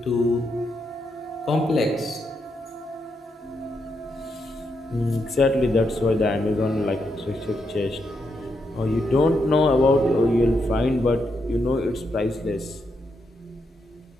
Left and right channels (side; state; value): both; normal; correlation 0.81